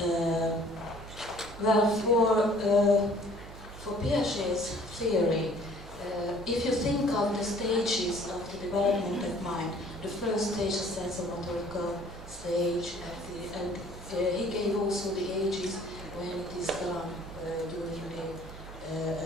Well, for Piaget's theory, if you think of the stages of the development of mind, the first stage is the sensomotorical stage, and he gave also the ages when it is done during the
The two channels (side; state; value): right; noise; hum, 14 dB below the sound